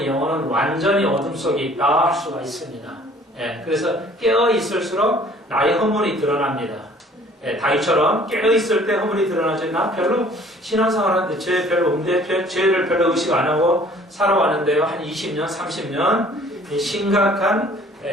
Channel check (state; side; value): normal; both; correlation 0.54